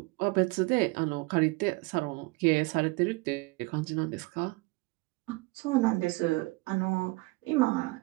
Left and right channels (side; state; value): left; quieter; 24.0 dB